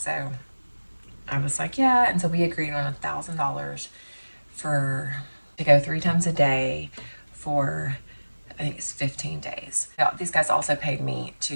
I was like, yeah. And so we agreed on $1,000 to go 3 times a day for, I think it's 15 days. Now, these guys also paid me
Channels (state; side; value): inverted; both; correlation -1.00